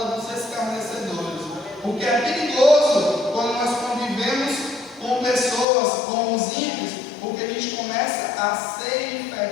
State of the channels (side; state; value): right; drops out; at 5.7 s